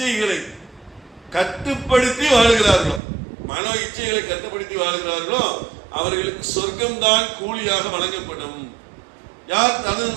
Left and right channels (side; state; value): left; drops out; at 3.0 s